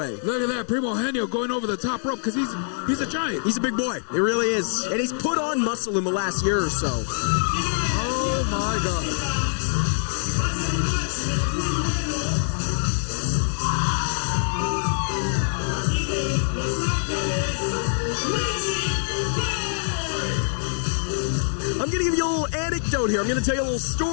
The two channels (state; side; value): silent; right; digital silence